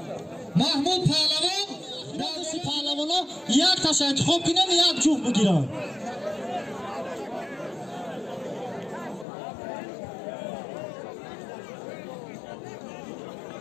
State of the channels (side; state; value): right; drops out; at 9.2 s